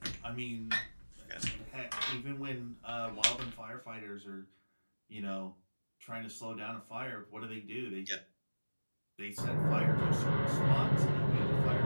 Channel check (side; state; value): both; inverted; correlation -1.00